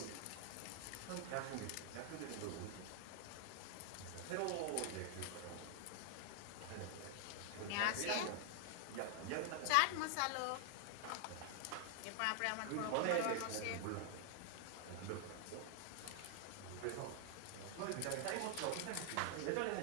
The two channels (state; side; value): different; both; correlation 0.00